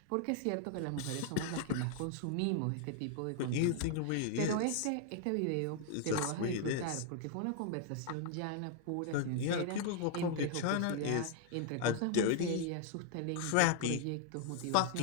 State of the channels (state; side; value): different; both; correlation 0.00